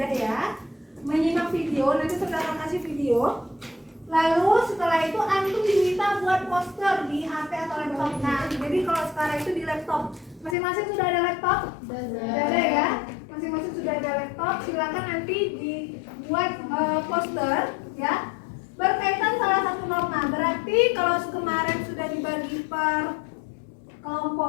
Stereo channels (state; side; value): drops out; right; at 10.6 s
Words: ya. Menyimak video, nanti saya akan kasih video. Lalu setelah itu antum diminta buat poster di HP atau laptop. Nah, jadi kalau sekarang itu di laptop. Masing-masing sudah ada laptop? Sudah ada ya. Masing-masing sudah ada laptop. Silakan nanti dibuat poster ya. Berkaitan salah satu norma. Berarti kalau kemarin sudah dibagi per